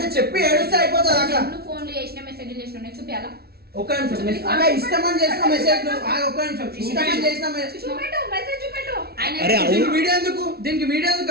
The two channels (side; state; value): left; late; 0.45 ms